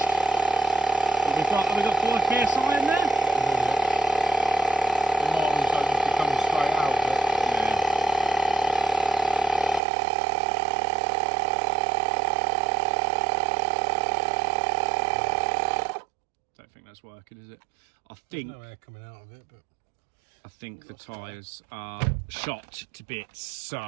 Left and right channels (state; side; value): drops out; left; at 9.8 s